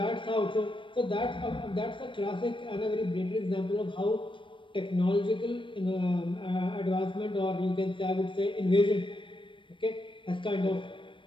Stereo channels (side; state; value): right; late; 0.24 ms